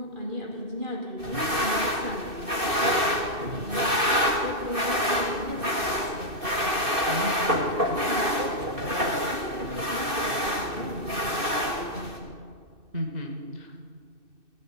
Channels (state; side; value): late; left; 2.6 ms